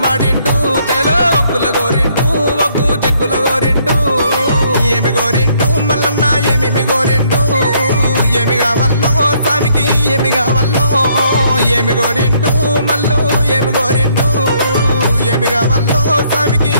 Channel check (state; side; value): inverted; both; correlation -0.67